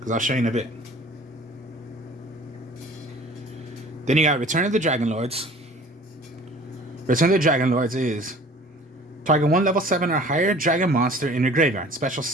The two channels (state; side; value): normal; both; correlation 0.48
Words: I'll show you in a bit. Then you got Return of the Dragon Lords. Return of the Dragon Lords is target 1 level 7 or higher dragon monster in your graveyard. Special